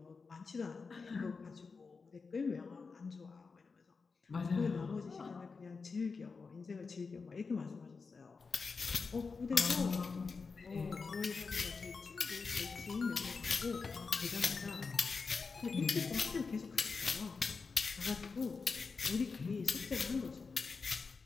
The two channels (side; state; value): right; quieter; 4.7 dB